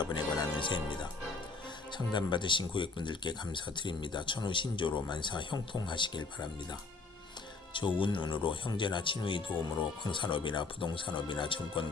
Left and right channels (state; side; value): quieter; right; 4.0 dB